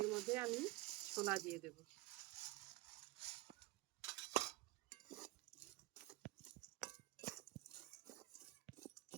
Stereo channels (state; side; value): quieter; left; 20.6 dB